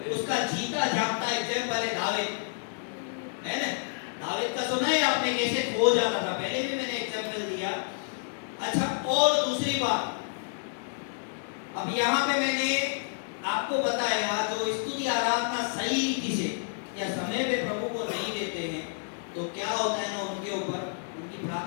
उसका जीता जागता एग्जाम्पल है दाऊद, है ना? दाऊद का सुना है आपने कैसे खो जाता था, पहले भी मैंने एग्जाम्पल दिया। अच्छा, और दूसरी बात, अब यहाँ पे मैंने आपको बताया, जो स्तुति आराधना सही रीति से या समय पे प्रभु को नहीं देते हैं, तो क्या होता है ना, उनके ऊपर उनकी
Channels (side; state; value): right; silent; 58 dB below the other